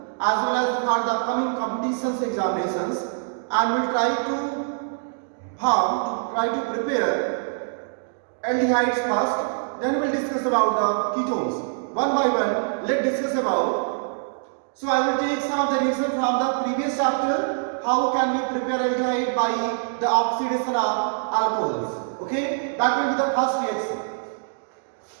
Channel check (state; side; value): silent; left; digital silence